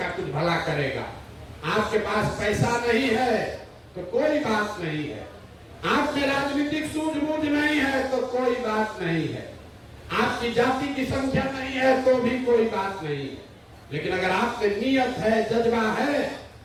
कुछ भला करेगा। आपके पास पैसा नहीं है तो कोई बात नहीं है, आप में राजनीतिक सूझबूझ नहीं है तो कोई बात नहीं है, आपकी जाति की संख्या नहीं है तो भी कोई बात नहीं है, लेकिन अगर आप में नियत है, जज्बा है,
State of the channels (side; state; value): both; identical; correlation 1.00